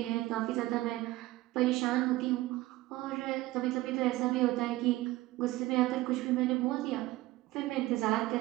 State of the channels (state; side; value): quieter; left; 18.1 dB